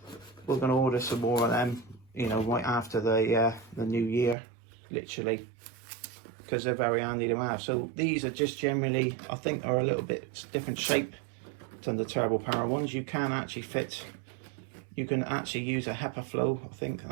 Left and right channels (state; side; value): drops out; left; at 4.4 s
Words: we're going to order some more of them, you know, right after the new year, literally, because they're very handy to have. So these are just generally, I think, are a little bit different shape than the turbo power ones. You can actually fit, you can actually use a HEPA flow. I think